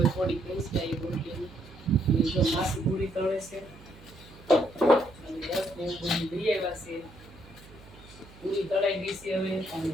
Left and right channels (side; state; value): right; noise; hum, 21 dB below the sound